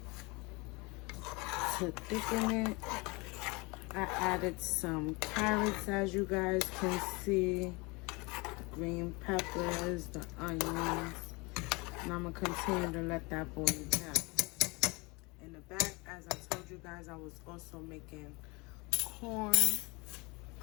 to thicken it. I added some carrots, as you guys can see, green peppers, the onions, and I'm gonna continue to let that boil down. In the back, as I told you guys, I was also making corn.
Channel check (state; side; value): quieter; right; 26.7 dB